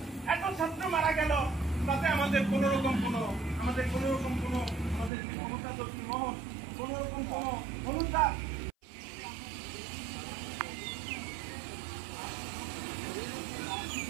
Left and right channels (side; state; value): left; drops out; at 5.1 s